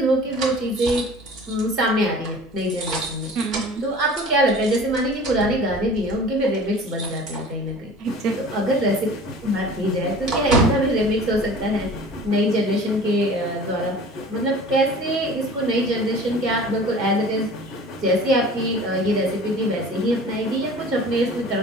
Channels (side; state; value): both; normal; correlation 0.43